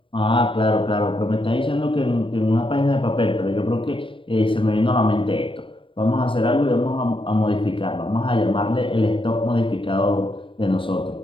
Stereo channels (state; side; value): late; right; 0.25 ms